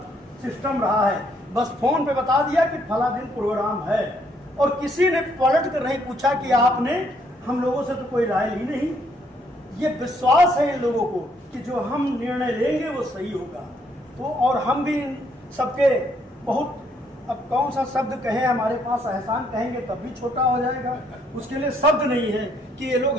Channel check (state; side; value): normal; both; correlation 0.70